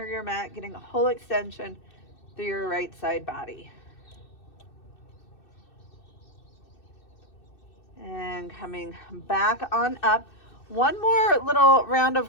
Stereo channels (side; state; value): right; late; 2.6 ms